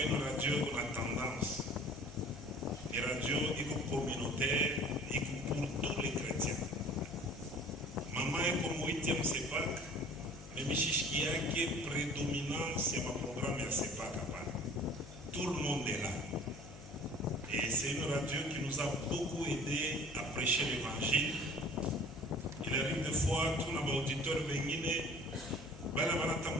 une radio qu'on a tendance. Une radio communautaire et pour tous les chrétiens. Maman est comme 8e CEPAC, mais Michichkia qui est prédominant sur ma programme à CEPAC. Tout le monde est là. Et c'est une radio qui nous a beaucoup aidé à prêcher l'évangile. Il arrive des fois, tout nos auditeurs viennent, moi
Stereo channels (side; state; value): left; noise; hum, 15 dB below the sound